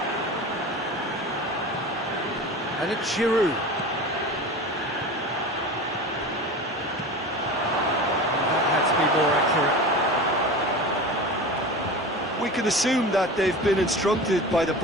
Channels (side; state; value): both; normal; correlation 0.32